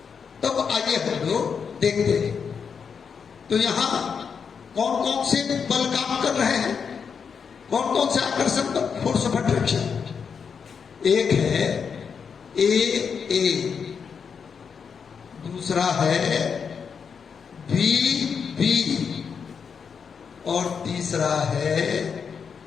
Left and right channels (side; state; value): right; quieter; 6.4 dB